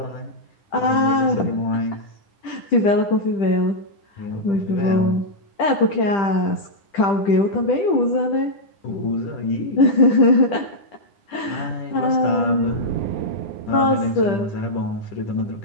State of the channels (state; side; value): late; right; 10 ms